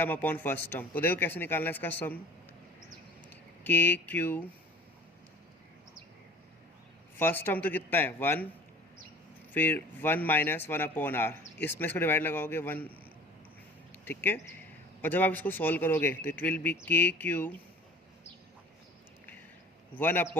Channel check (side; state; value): both; normal; correlation 0.44